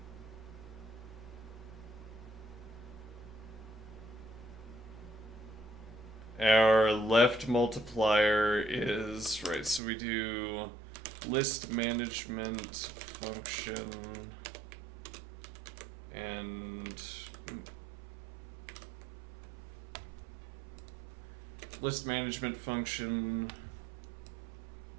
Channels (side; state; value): left; drops out; at 9.8 s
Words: our left multiplier is, right, so we do list management function and list management function.